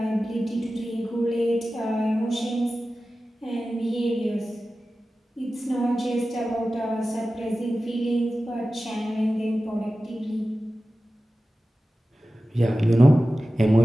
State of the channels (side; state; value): both; normal; correlation 0.95